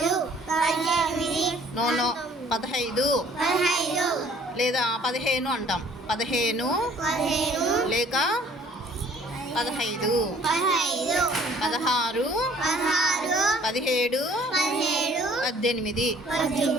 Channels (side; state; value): both; normal; correlation 0.56